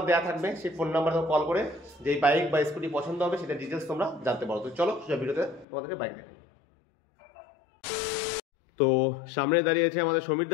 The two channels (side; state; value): right; drops out; at 5.7 s